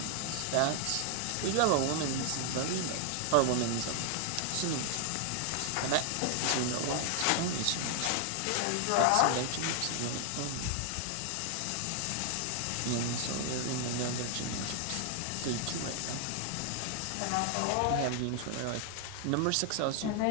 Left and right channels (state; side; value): different; both; correlation 0.00